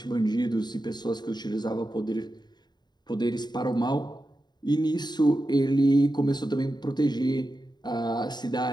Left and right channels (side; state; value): right; late; 0.21 ms